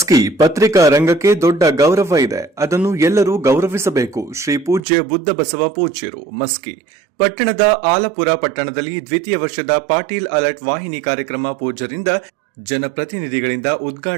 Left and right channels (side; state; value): left; drops out; at 4.8 s